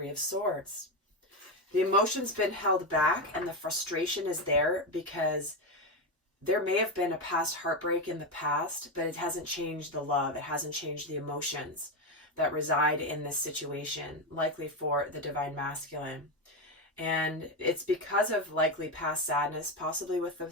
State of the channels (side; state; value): both; normal; correlation 0.12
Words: of Swords. The emotion's been held back and the frustration is there because there may have been a past heartbreak in the past, but it hasn't changed the love. It hasn't changed the emotions that reside in this situation, likely for the Divine Masculine. And it's because of likely past sadness, possibly with